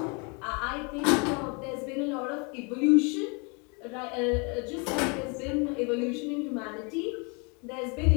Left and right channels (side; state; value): right; quieter; 32.6 dB